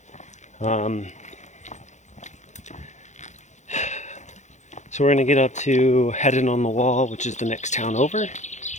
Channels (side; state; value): right; late; 0.34 ms